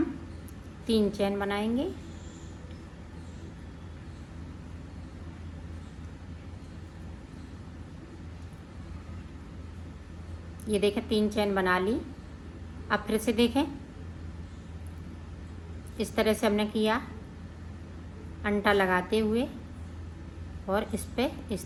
3 चैन बनाएंगे। ये देखें 3 चैन बना ली। अब फिर से देखें इस तरह से हमने किया, अंटा लगाते हुए और इस पे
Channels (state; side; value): identical; both; correlation 1.00